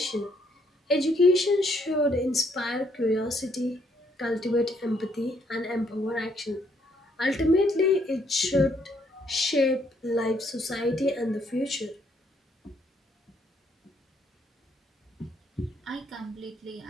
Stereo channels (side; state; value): both; normal; correlation 0.70